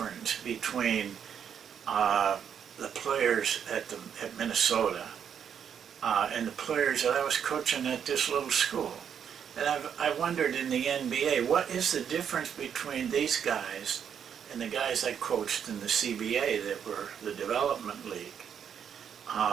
between the players at Minnesota and the players that I was coaching at this little school? And I wondered in the NBA, what is the difference between these guys and the guys I coached in the CBA that were the development league?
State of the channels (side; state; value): left; quieter; 8.1 dB